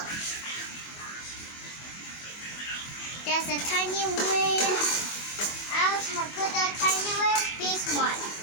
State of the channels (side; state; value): right; late; 24 ms